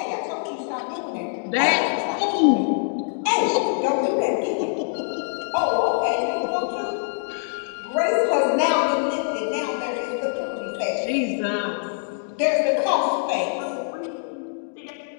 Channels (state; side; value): silent; right; digital silence